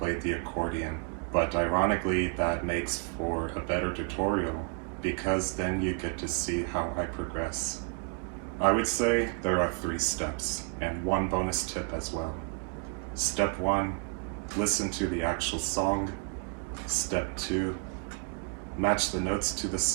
the accordion, but ironically that makes for a better tutorial because then you get to see how I progress. I would say there are 3 steps and 1 bonus tip as well. Step 1, listen to the actual song. Step 2, match the notes to the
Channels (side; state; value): left; quieter; 35.7 dB